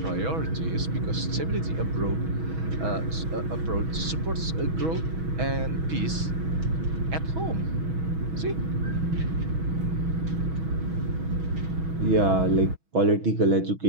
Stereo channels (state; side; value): late; left; 6.2 ms